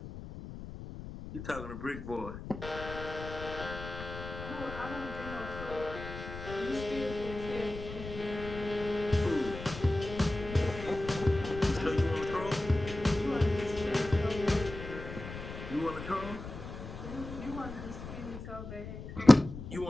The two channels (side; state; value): left; noise; rumble, 10 dB below the sound